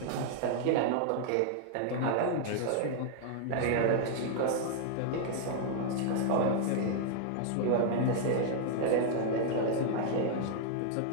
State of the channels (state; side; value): different; both; correlation -0.01